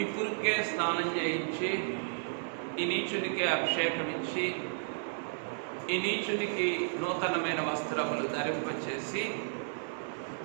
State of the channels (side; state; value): left; silent; 56 dB below the other